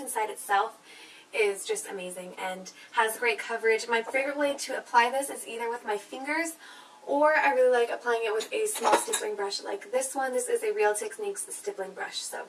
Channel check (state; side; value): identical; both; correlation 1.00